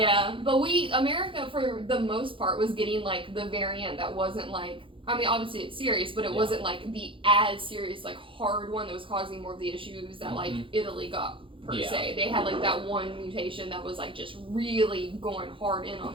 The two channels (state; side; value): late; left; 0.25 ms